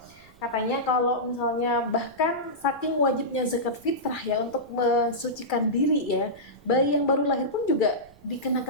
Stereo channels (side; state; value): right; noise; rumble, 27 dB below the sound